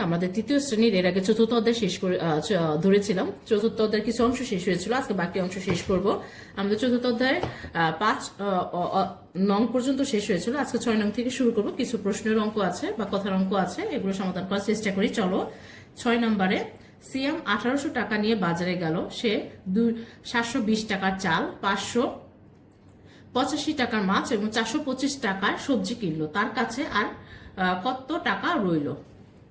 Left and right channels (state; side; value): identical; both; correlation 1.00